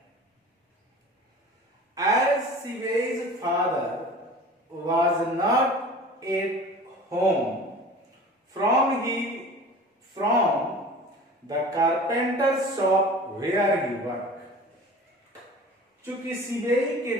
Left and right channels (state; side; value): normal; both; correlation 0.40